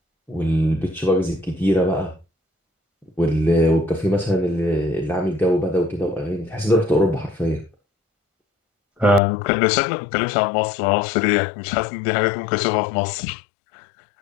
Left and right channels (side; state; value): right; drops out; at 9.2 s